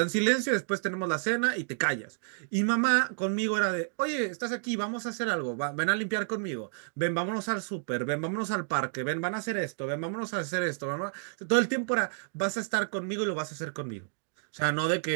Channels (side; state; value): left; silent; digital silence